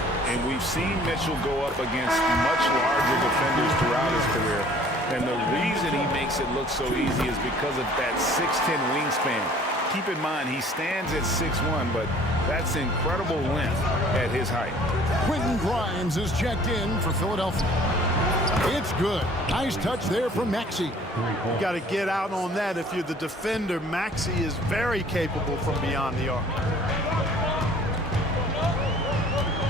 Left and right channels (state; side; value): normal; both; correlation 0.53